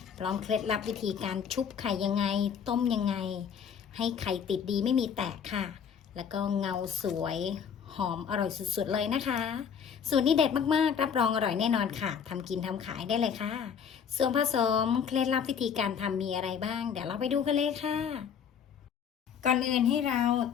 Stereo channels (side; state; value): right; quieter; 7.4 dB